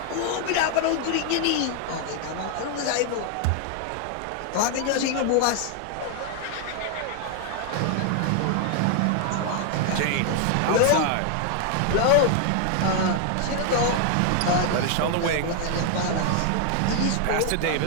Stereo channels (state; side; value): different; both; correlation 0.00